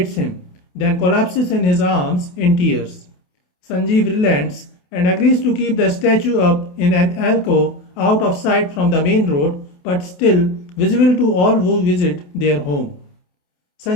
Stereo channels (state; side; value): late; right; 28 ms